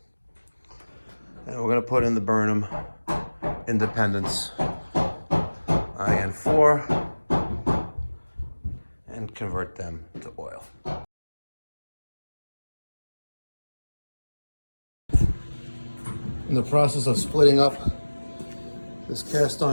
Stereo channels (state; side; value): inverted; both; correlation -1.00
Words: And we're going to put in the Burnham Independence IN4 and convert them to oil. In the process of splitting up this cast